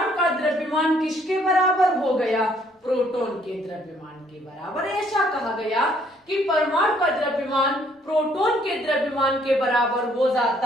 का द्रव्यमान किसके बराबर हो गया? प्रोटॉन के द्रव्यमान के बराबर। ऐसा कहा गया कि परमाणु का द्रव्यमान प्रोटॉन के द्रव्यमान के बराबर हो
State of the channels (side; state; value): both; normal; correlation 0.65